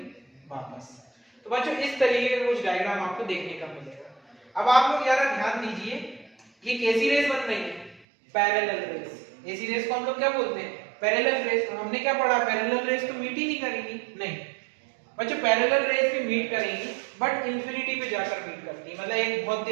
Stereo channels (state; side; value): drops out; left; at 8.1 s